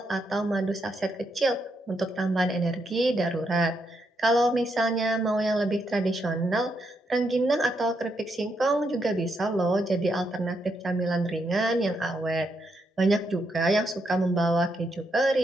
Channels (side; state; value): both; normal; correlation 0.80